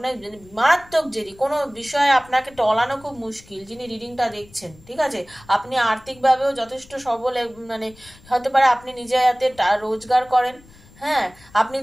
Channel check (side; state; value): left; noise; rumble, 25 dB below the sound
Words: মারাত্মক জেদি, কোনো বিষয়ে আপনাকে টলানো খুব মুশকিল, যিনি রিডিংটা দেখছেন, ঠিক আছে? আপনি আর্থিকভাবেও যথেষ্ট সবল, মানে হতে পারে আপনি নিজে হাতে রোজগার করেন, হ্যাঁ, আপনি